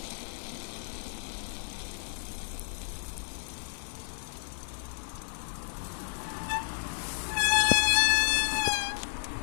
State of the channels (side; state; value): right; silent; 56 dB below the other